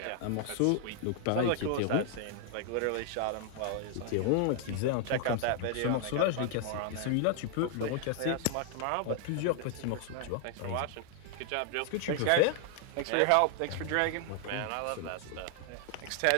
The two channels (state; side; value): different; both; correlation 0.00